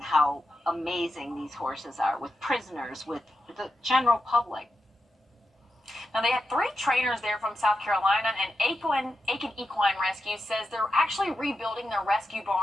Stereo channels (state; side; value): normal; both; correlation 0.88